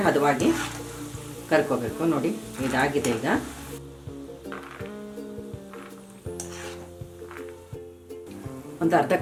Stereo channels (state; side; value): identical; both; correlation 1.00